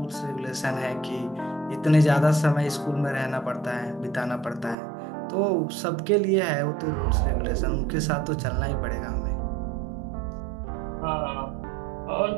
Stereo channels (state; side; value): drops out; left; at 4.8 s